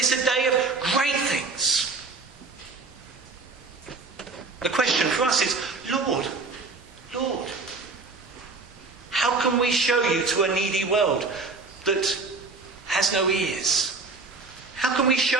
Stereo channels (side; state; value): left; quieter; 3.9 dB